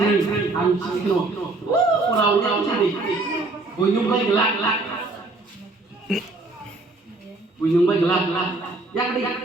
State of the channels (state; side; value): quieter; left; 3.2 dB